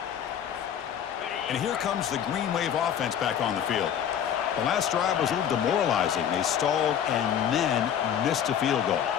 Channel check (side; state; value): right; quieter; 9.1 dB